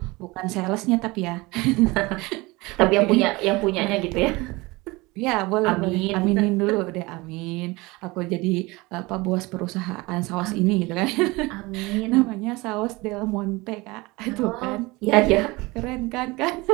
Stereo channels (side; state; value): left; quieter; 23.0 dB